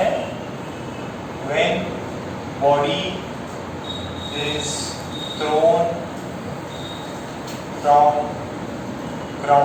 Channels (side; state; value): both; identical; correlation 1.00